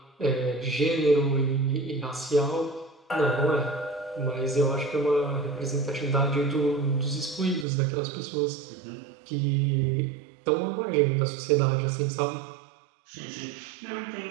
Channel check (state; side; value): drops out; left; at 7.7 s